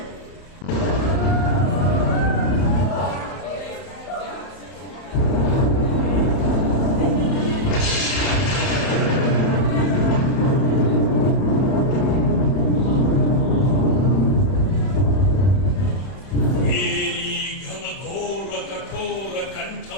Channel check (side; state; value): right; late; 31 ms